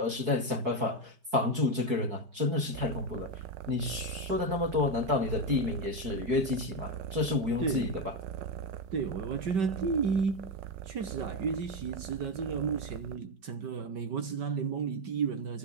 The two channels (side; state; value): left; late; 4.6 ms